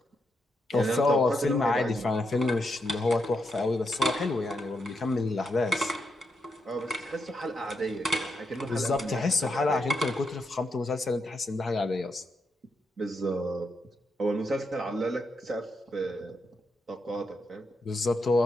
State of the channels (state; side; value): normal; both; correlation 0.82